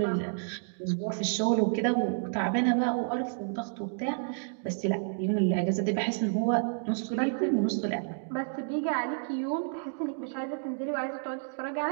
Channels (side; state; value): left; silent; digital silence